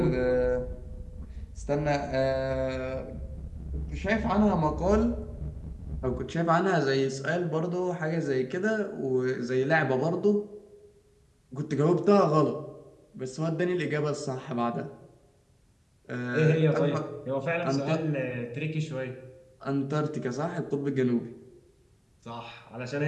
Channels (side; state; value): both; identical; correlation 1.00